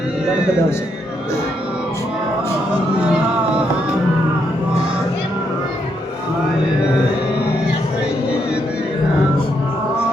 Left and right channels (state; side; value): normal; both; correlation 0.77